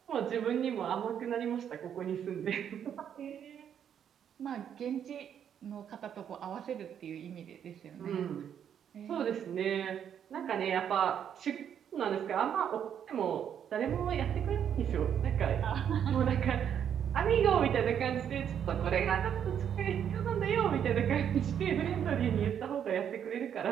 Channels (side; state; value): left; quieter; 8.8 dB